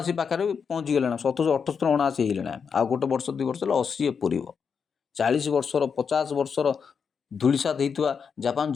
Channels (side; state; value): right; quieter; 6.3 dB